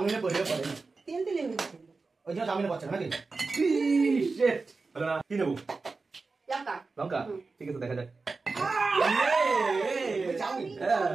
পড়ে পড়ে তেল তেলে হয়ে যাচ্ছে ওই জন্য চাউমিনে পড়ছে নাকি শিট হলো না কি নেবো লঙ্কা লঙ্কা ঠিক আছে দেখা যাক চাউমিন চাউমিন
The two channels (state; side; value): quieter; left; 4.0 dB